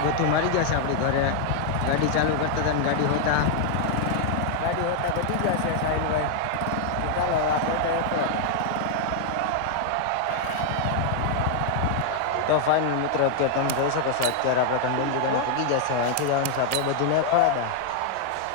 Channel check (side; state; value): both; different; correlation 0.00